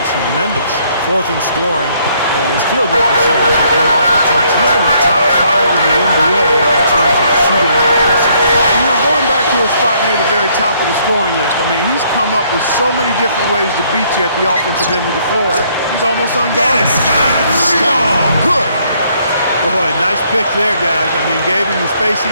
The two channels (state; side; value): inverted; both; correlation -0.67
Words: tremendous. Fourth in scoring, and his field goal percentage has been off the charts. He's in the top 5 in the NBA in terms of shooting accuracy. You know, going back to a spot near the very top of the scoring list, I mean, he's come up with so many different ways to beat you at the offensive end of the floor. He's almost unguarded. Stop. Good. Boy, nice pick there, guys. I mean, gave him the space he